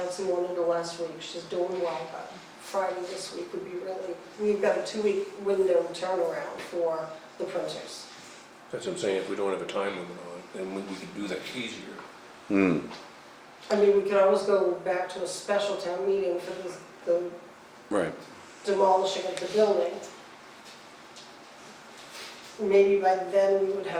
wanted her last week. She's doing well, but Friday this week would be really, we've got a 2-week window turnaround for the printers. That's what I'm saying, if we don't have a time limit on it, then we could do that easier. I mean, we could always go back to a special town meeting for the Right. demolishing of the building. Maybe by then we would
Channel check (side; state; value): both; identical; correlation 1.00